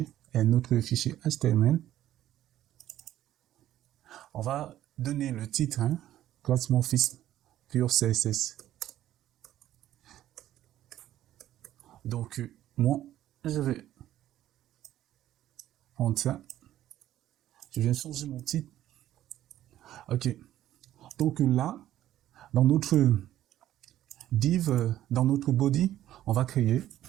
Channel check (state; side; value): quieter; left; 12.9 dB